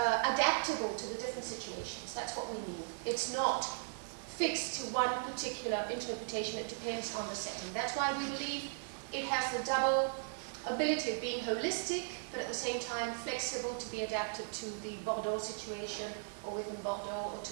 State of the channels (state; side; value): silent; left; 53 dB below the other